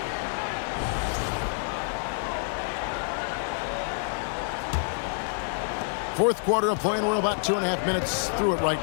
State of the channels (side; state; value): right; silent; 60 dB below the other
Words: Fourth quarter of play, and we're about 2.5 minutes through it right